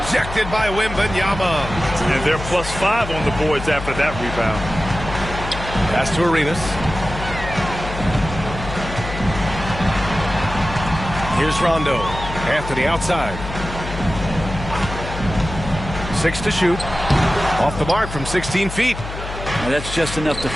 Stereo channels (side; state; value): left; noise; hum, 9 dB below the sound